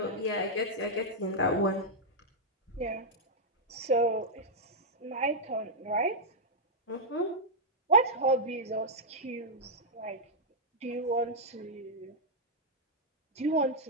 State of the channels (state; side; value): normal; both; correlation -0.07